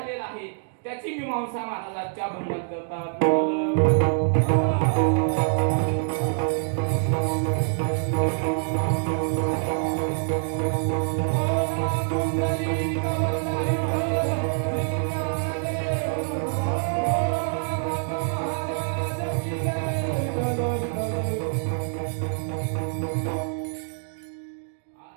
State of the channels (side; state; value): left; silent; digital silence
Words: आहे त्याची मीमांसा महाराजांच्या भंगात करतात.